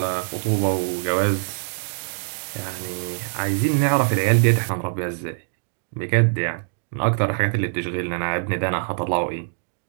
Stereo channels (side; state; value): left; silent; digital silence